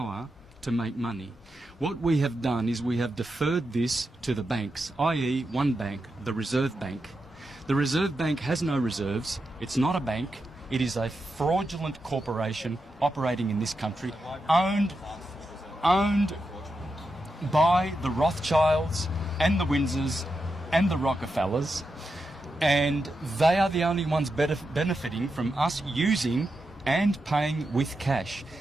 to make money. What we have done is we have deferred this to the banks, i.e. one bank, the Reserve Bank. The Reserve Bank has no reserves. It's not a bank. It is a fraudulent corporation operating in this country, owned by the Rothschilds and the Windsors and the Rockefellers, and they are the only ones benefiting from us using and paying with cash.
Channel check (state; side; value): normal; both; correlation 0.87